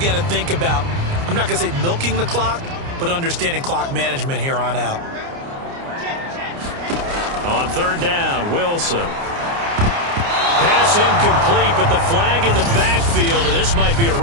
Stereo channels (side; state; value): left; late; 29 ms